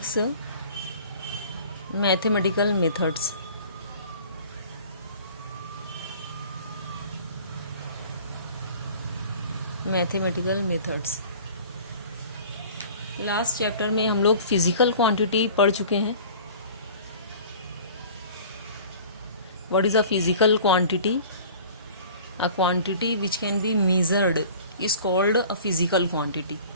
mathematical methods. Mathematical methods. Last chapter में हम लोग फिजिकल क्वांटिटी पढ़ चुके हैं। What is a physical quantity? A quantity which can be measured is called a physical quantity.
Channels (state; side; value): inverted; both; correlation -0.45